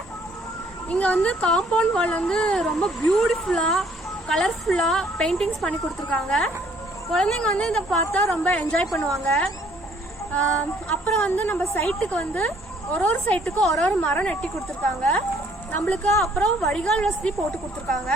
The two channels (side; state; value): both; normal; correlation 0.62